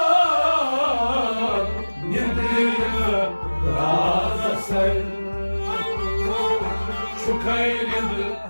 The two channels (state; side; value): inverted; both; correlation -1.00